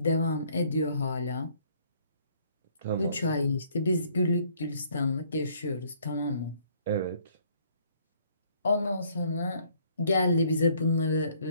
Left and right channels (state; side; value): inverted; both; correlation -0.63